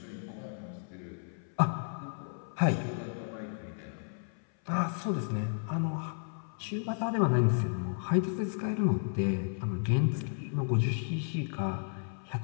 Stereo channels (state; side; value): silent; right; 56 dB below the other